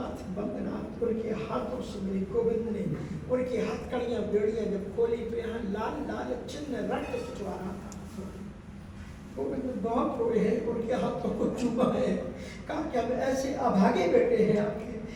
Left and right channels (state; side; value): identical; both; correlation 1.00